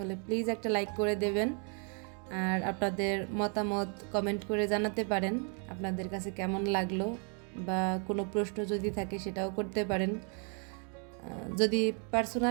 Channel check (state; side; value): quieter; left; 39.1 dB